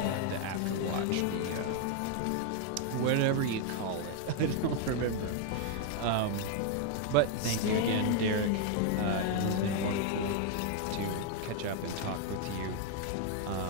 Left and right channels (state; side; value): different; both; correlation 0.00